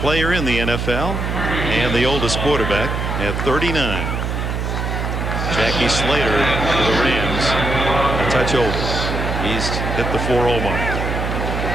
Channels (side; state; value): right; noise; hum, 2 dB below the sound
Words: player in the NFL and the oldest quarterback at 39. Jackie Slater for the Rams, a touch over. He's hit the 4-0 mark.